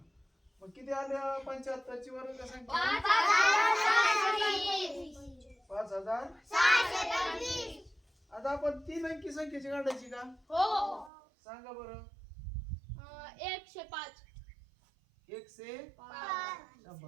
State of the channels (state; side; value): drops out; left; at 11.1 s